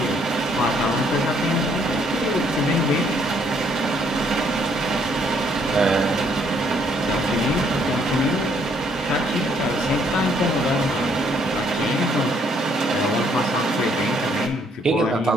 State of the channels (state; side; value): normal; both; correlation 0.67